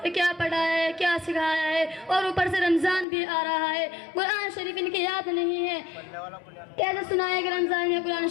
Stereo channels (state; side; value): drops out; right; at 3.1 s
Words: कि क्या पढ़ाया है, क्या सिखाया है, और ऊपर से रमजान भी आ रहा है, कुरान शरीफ इनकी याद नहीं है। कैसे सुनाए कि रमजान में कुरान